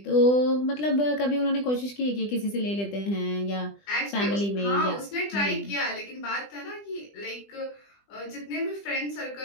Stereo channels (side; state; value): right; late; 20 ms